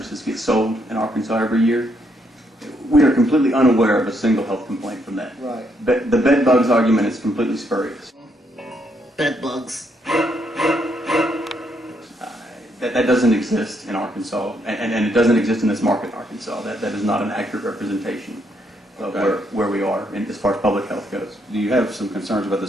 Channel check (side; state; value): both; normal; correlation 0.75